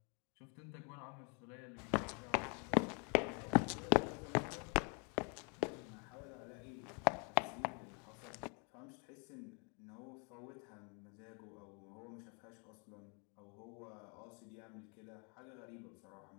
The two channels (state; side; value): quieter; right; 36.4 dB